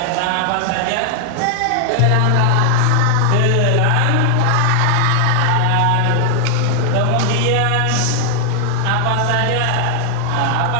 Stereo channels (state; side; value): different; both; correlation 0.00